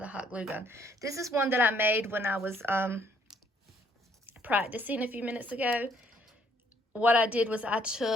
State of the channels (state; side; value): normal; both; correlation 0.65